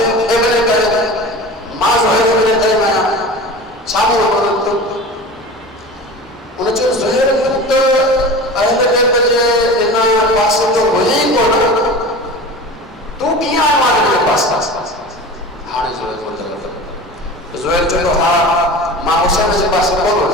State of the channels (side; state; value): both; normal; correlation 0.34